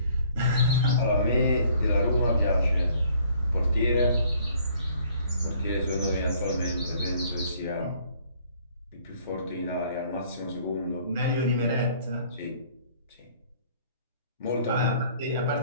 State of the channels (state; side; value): inverted; both; correlation -0.59